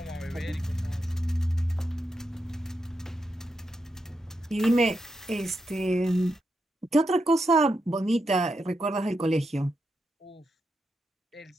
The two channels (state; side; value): normal; both; correlation 0.85